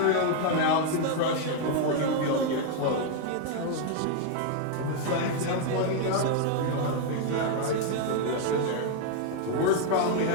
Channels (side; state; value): both; different; correlation 0.00